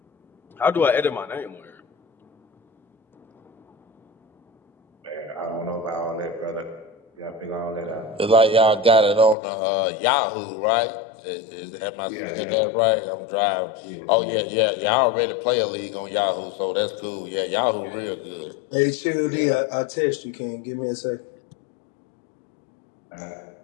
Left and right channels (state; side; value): drops out; right; at 9.3 s